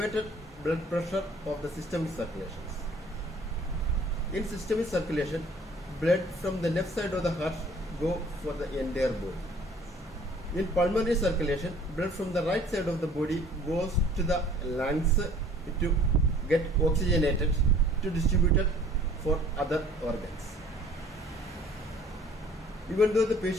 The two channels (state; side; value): normal; both; correlation 0.53